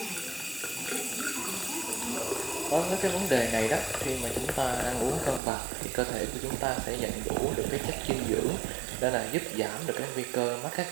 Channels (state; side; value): drops out; left; at 5.4 s